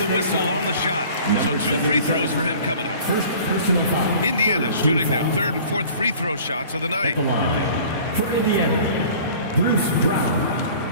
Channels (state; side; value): inverted; both; correlation -0.47